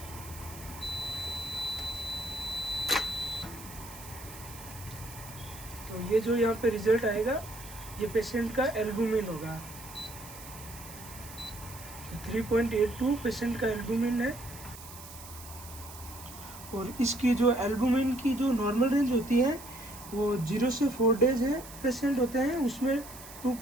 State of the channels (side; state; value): right; noise; hiss, 15 dB below the sound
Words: तो ये जो यहाँ पे रिजल्ट आएगा ये पेशेंट का एल्बुमिन होगा। तो 3.82 पेशेंट का एल्बुमिन है। और इसकी जो एल्बुमिन की जो नॉर्मल रेंज होती है वो 0 से 4 डेज है पेशेंट होते हैं, उसमें